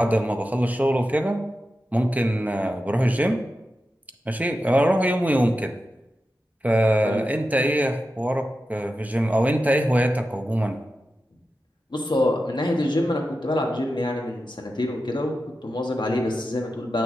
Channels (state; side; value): normal; both; correlation 0.91